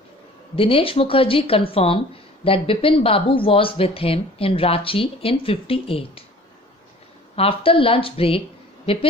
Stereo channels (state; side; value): normal; both; correlation 0.48